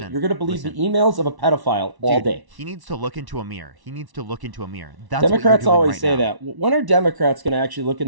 You're gonna believe listen. the emails of a pedophile all Dude, day. He needs to look into a mirror. He needs to look into a mirror. That's what Democrats you're doing always right say now. that. When are Democrats going to actually look in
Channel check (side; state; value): left; late; 1.1 ms